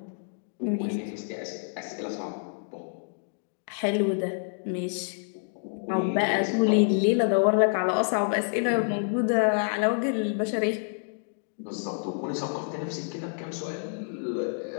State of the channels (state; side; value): silent; right; digital silence